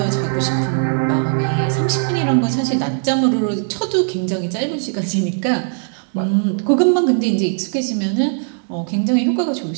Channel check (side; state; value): left; silent; 67 dB below the other